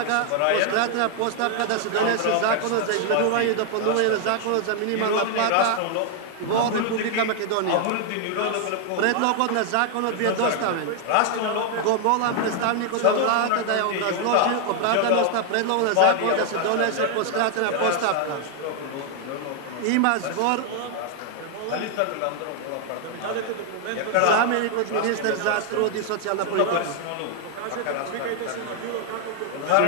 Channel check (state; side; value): different; both; correlation 0.00